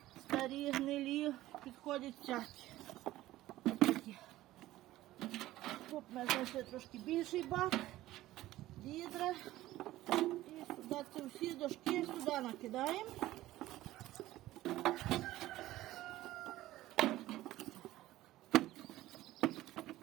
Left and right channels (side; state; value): left; quieter; 15.7 dB